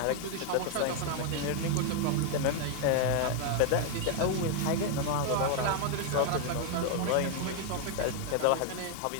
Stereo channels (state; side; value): different; both; correlation 0.00